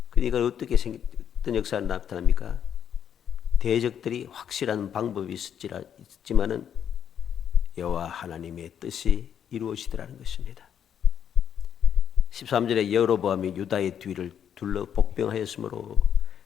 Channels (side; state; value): right; quieter; 8.8 dB